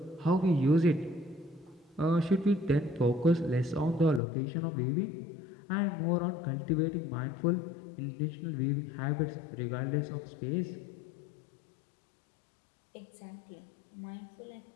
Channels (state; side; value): drops out; right; at 4.2 s